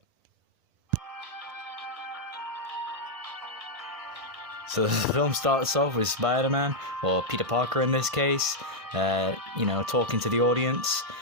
So the film starts off with Spider-Man, or Peter Parker in this case, talking to the audience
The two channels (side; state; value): left; late; 1.5 ms